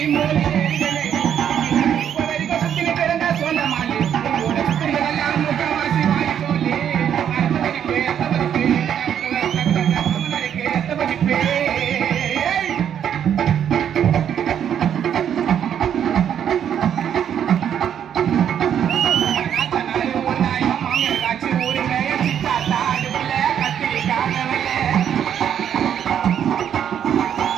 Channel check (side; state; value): left; quieter; 9.2 dB